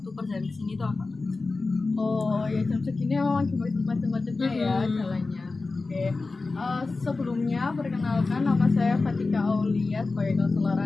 perjalanan di sini tuh agak macet. Oh ya jam segini memang lagi macet-macetnya ya jalannya. Oke. Sebelumnya perkenalkan nama saya Fatika Aulia sebagai konselor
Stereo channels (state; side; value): quieter; right; 3.7 dB